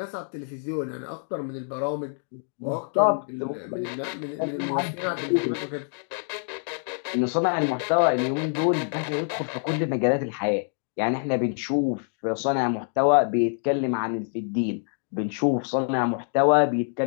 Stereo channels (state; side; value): silent; right; 61 dB below the other